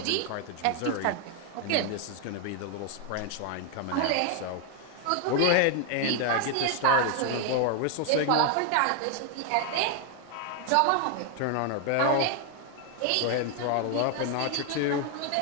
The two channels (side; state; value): both; different; correlation 0.00